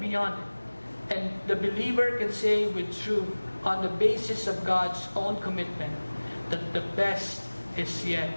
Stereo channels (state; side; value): inverted; both; correlation -1.00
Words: beyond it, and the believer can say with truth on the basis of God's own commitment that the best is yet